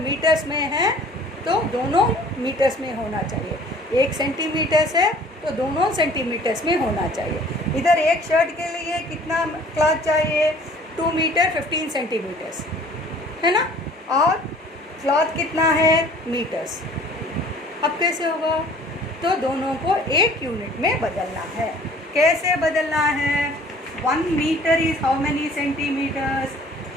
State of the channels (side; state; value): both; normal; correlation 0.51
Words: में है तो दोनों मीटर्स में होना चाहिए. 1 सेंटीमीटर्स है तो दोनों सेंटीमीटर्स में होना चाहिए. इधर एक शर्ट के लिए कितना क्लॉथ चाहिए, 2 मीटर 15 सेंटीमीटर्स है ना, और क्लॉथ कितना है, मीटर्स. अब कैसे होगा, तो दोनों को एक यूनिट में बदलना है. कैसे बदलना है, 1 metre is how many centimetres,